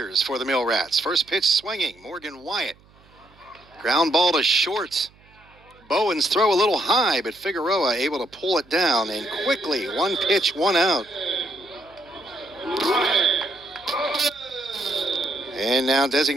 for the Mill Rats. First pitch swinging, Morgan Wyatt. Ground ball to short. Bowens throw a little high, but Figueroa able to pull it down, and quickly, one pitch, one out. And now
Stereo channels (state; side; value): noise; right; hum, 29 dB below the sound